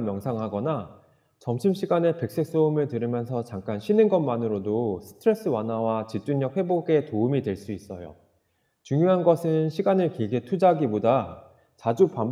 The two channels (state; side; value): identical; both; correlation 1.00